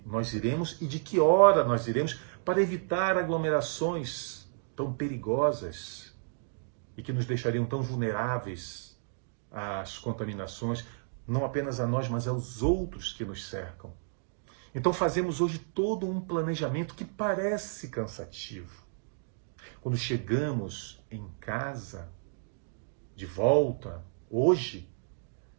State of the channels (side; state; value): left; silent; digital silence